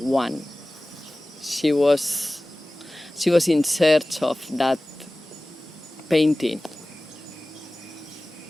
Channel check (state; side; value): normal; both; correlation 0.97